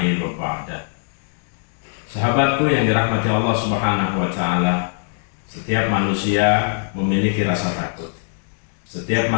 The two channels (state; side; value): silent; right; digital silence